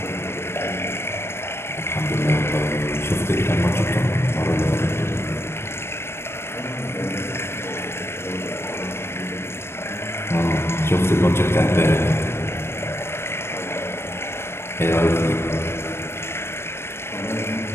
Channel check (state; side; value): late; right; 0.12 ms